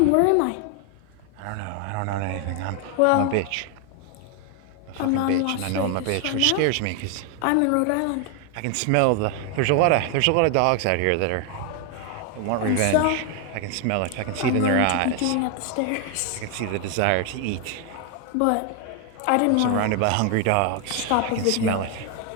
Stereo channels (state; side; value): different; both; correlation 0.01